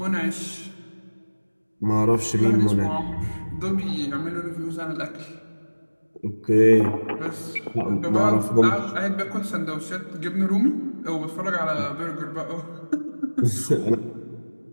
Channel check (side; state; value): both; inverted; correlation -1.00